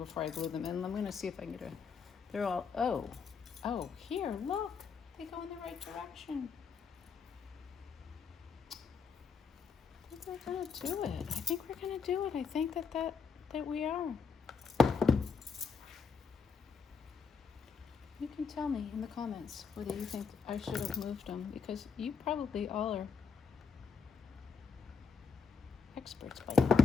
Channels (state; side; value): quieter; right; 5.6 dB